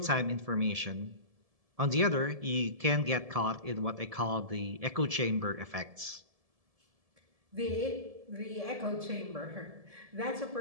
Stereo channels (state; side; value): late; left; 1.7 ms